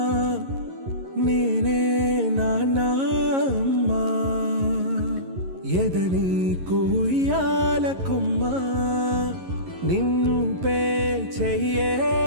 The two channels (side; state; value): left; late; 11 ms